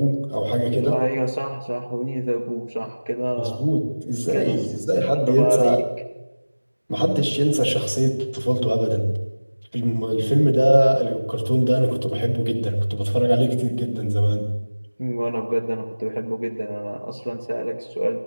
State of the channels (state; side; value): inverted; both; correlation -1.00